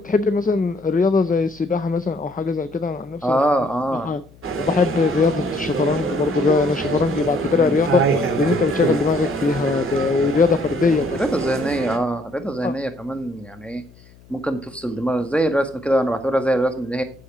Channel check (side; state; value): left; noise; hum, 26 dB below the sound